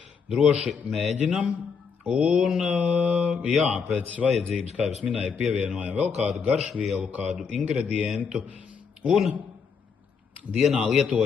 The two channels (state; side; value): quieter; right; 5.9 dB